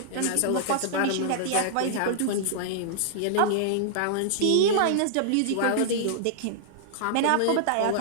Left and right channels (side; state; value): both; different; correlation -0.01